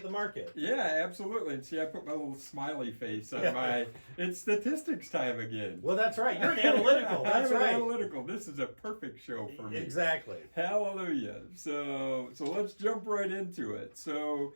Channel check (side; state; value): both; inverted; correlation -1.00